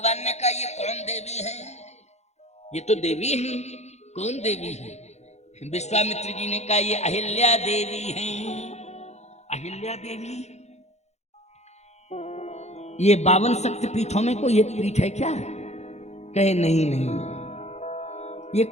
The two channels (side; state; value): right; late; 0.32 ms